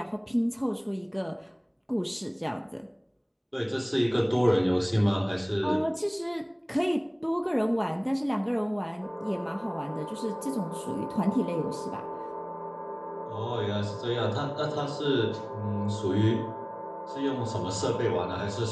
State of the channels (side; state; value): both; identical; correlation 1.00